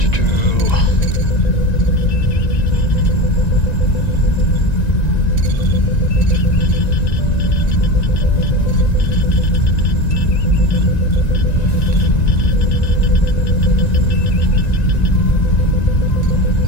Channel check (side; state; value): right; late; 1.9 ms